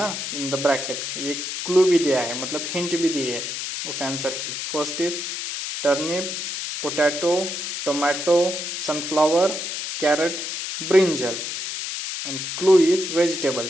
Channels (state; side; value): noise; left; hiss, 5 dB below the sound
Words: in the bracket. ये clue भी दिया है, मतलब hint भी दी है उस आंसर की. First is turnip, potato, tomato, sunflower, carrot, brinjal. And clue is